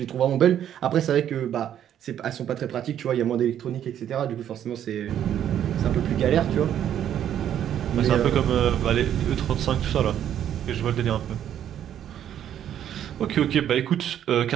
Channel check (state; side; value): quieter; left; 10.3 dB